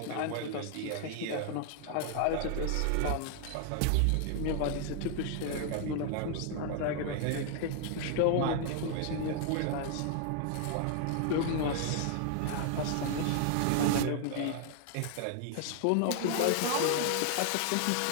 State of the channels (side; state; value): both; different; correlation 0.00